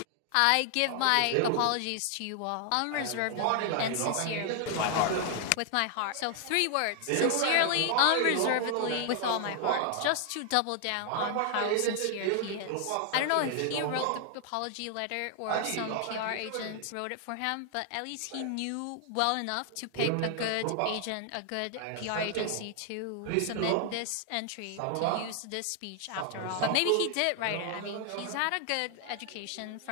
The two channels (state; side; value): different; both; correlation 0.00